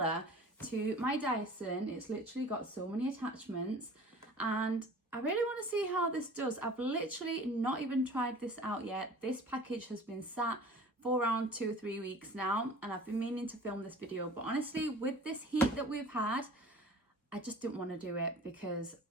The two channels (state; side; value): normal; both; correlation 0.44